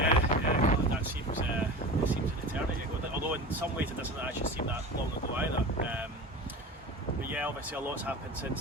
God, that seems it seems an eternity ago. Although in some ways it doesn't actually seem that long ago either. But yeah, obviously a lot's happened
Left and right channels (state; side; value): normal; both; correlation 0.32